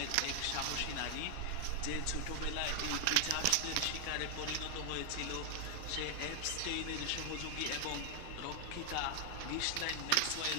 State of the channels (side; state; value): both; different; correlation 0.00